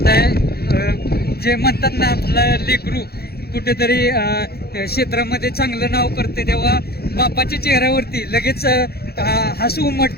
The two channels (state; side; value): late; right; 0.46 ms